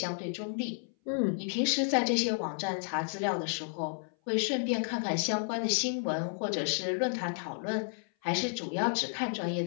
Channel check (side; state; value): right; silent; 57 dB below the other